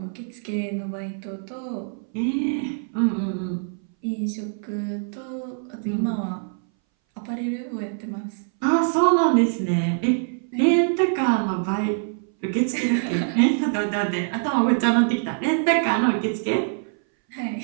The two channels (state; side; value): silent; left; 60 dB below the other